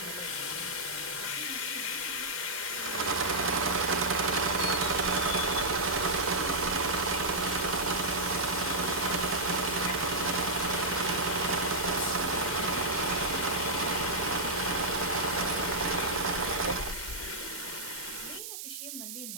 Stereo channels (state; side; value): noise; right; hiss, 8 dB below the sound